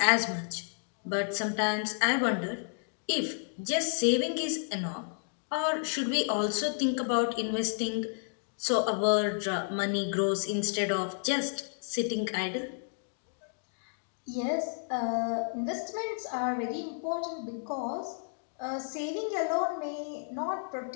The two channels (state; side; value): silent; right; digital silence